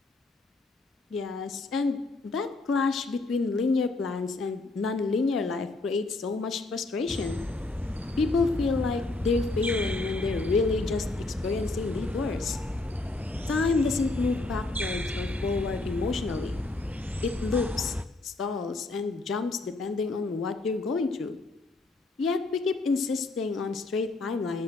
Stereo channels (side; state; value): right; quieter; 3.3 dB